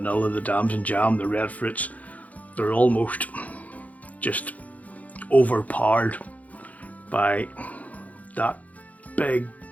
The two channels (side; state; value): right; late; 0.072 ms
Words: the dams and jam, the red fruits, they're almost just overpowered by that big